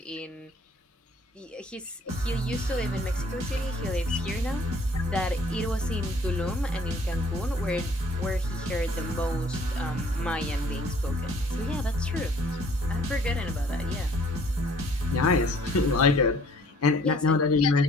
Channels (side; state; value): both; normal; correlation 0.57